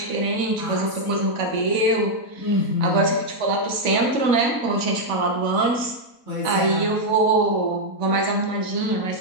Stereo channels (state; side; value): late; right; 4.0 ms